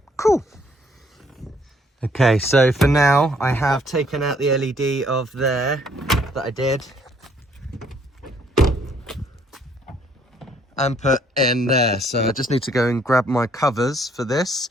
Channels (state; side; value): normal; both; correlation 0.65